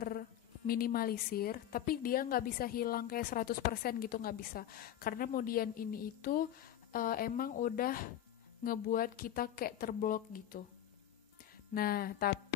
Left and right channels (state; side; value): quieter; right; 11.4 dB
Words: tapi dia nggak bisa hilang kayak 100% gitu, nggak bisa. Karena mudian ini itu emang udah ngebuat kita kayak terblok gitu. Nah,